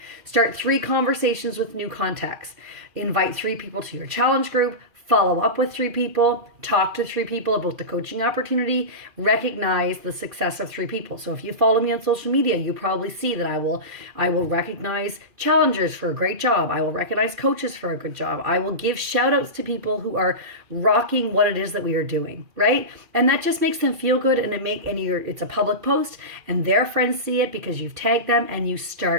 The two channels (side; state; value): left; late; 2.4 ms